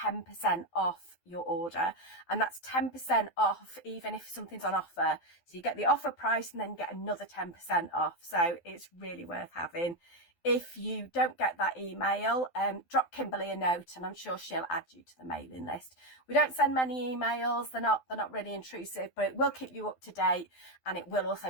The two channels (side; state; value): right; late; 12 ms